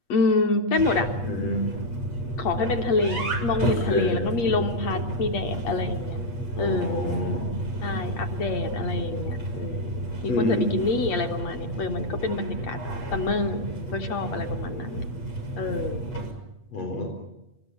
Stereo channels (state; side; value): late; right; 8.4 ms